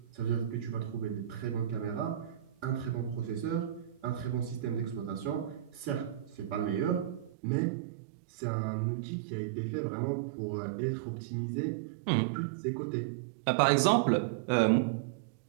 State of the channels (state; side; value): drops out; left; at 7.3 s